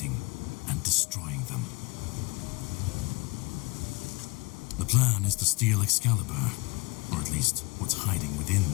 and destroying them. The plan is to steal Excalibur, or at least what's hiding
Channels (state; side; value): quieter; right; 26.1 dB